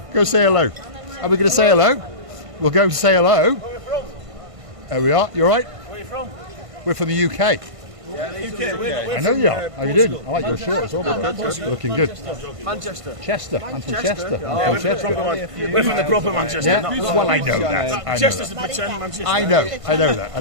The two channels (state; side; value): late; left; 1.5 ms